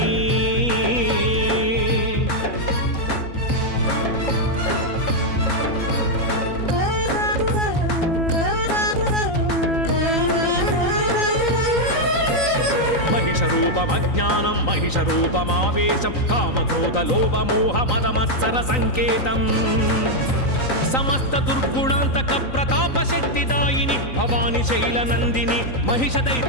महिषरूपमज्ञानं महिषरूपमावेशं कामक्रोध लोभ मोह मद मत्सर संकेतं समस्त दुर्गुणांतक प्रताप शक्तिदायिनी भवानी शैलनंदिनी महिष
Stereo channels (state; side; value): late; right; 3.9 ms